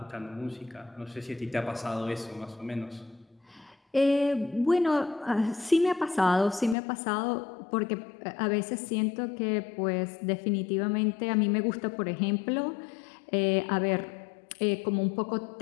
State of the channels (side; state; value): right; drops out; at 6.8 s